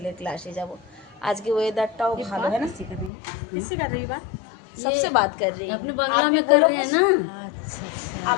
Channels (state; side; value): drops out; right; at 3.1 s